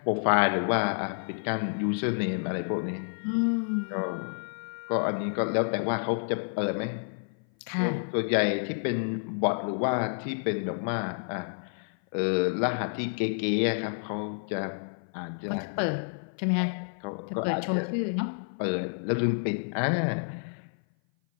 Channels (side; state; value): right; silent; 56 dB below the other